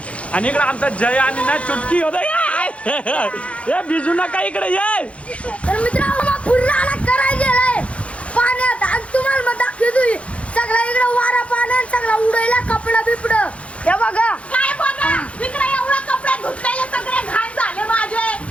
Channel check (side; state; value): right; late; 0.062 ms